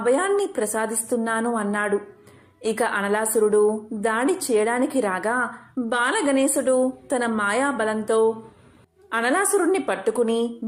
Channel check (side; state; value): both; identical; correlation 1.00